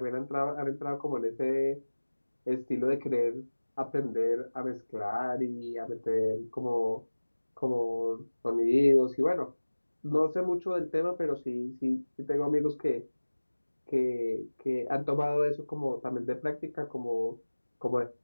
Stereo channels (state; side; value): inverted; both; correlation -1.00